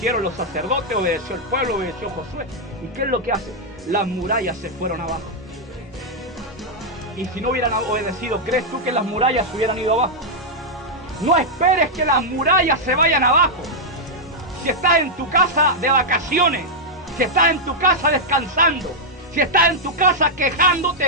los sacerdotes, obedeció el pueblo, obedeció Josué. ¿Y qué es lo que hace? Las murallas se fueron abajo. Y si no hubieran obedecido, ¿crees tú que las murallas se hubieran ido abajo? No esperes que las murallas se vayan abajo. Si estás en tu casa de vacaciones, si estás en tu casa descansando, Si estás en tu casa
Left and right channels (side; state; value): both; normal; correlation -0.04